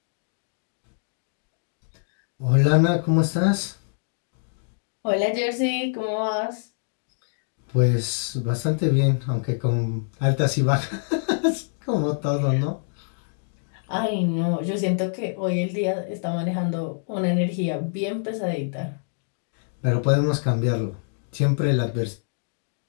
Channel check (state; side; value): silent; right; digital silence